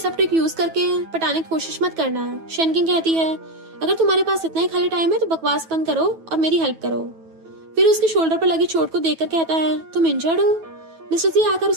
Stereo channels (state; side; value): late; left; 9.2 ms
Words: ट्रिक यूज करके पटाने की कोशिश मत करना। शैनकिंग कहती है अगर तुम्हारे पास इतना ही खाली टाइम है तो बकवास बंद करो और मेरी हेल्प करो। फिर उसके शोल्डर पर लगी चोट को देखकर कहता है तुम इंजर्ड हो। मिस्टर जी आकर